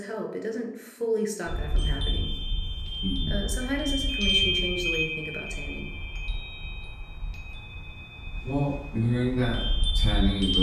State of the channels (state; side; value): identical; both; correlation 1.00